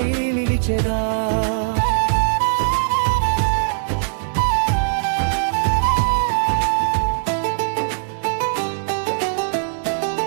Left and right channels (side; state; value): left; silent; digital silence